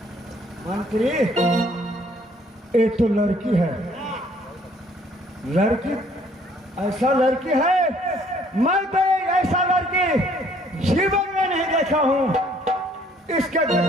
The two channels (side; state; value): both; normal; correlation 0.61